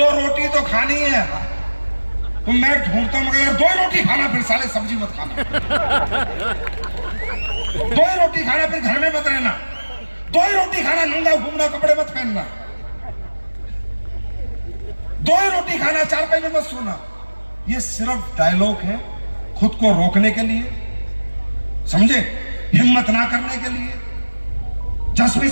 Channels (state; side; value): inverted; both; correlation -1.00